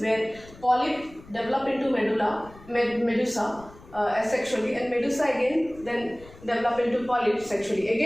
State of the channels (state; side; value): noise; left; rumble, 21 dB below the sound